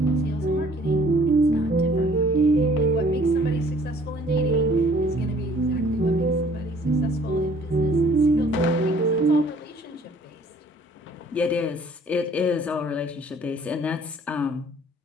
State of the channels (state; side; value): normal; both; correlation 0.56